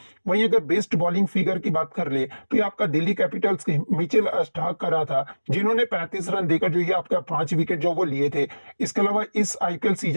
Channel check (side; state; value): both; inverted; correlation -1.00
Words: वहीं अगर बेस्ट बॉलिंग फिगर की बात कर ले, तो ये आपका दिल्ली कैपिटल्स के मिचेल स्टार्क का रहा था, जिन्होंने 35 रन देकर जो ये आपका 5 विकेट जो वो लिए थे। इसके अलावा इस आईपीएल